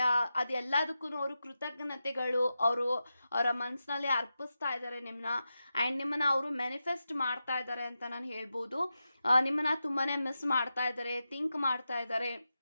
ಅದೆಲ್ಲದಕ್ಕೂ ಅವರು ಕೃತಜ್ಞತೆಗಳು ಅವರ ಮನಸ್ಸಿನಲ್ಲಿ ಅರ್ಪಿಸ್ತಾ ಇದ್ದಾರೆ ನಿಮ್ಮನ್ನ, ಆ್ಯಂಡ್ ನಿಮ್ಮನ್ನ ಅವರು ಮ್ಯಾನಿಫೆಸ್ಟ್ ಮಾಡ್ತಾ ಇದ್ದಾರೆ ಅಂತ ನಾನು ಹೇಳ್ಬೋದು. ನಿಮ್ಮನ್ನ ತುಂಬಾ ಮಿಸ್ ಮಾಡ್ತಾ ಇದ್ದಾರೆ, ಥಿಂಕ್ ಮಾಡ್ತಾ ಇದ್ದಾರೆ.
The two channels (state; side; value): inverted; both; correlation -0.91